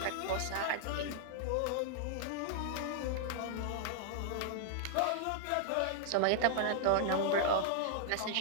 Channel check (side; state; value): both; different; correlation -0.01